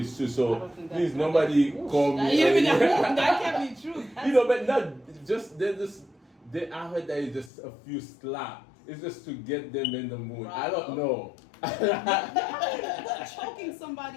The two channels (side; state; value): right; drops out; at 7.5 s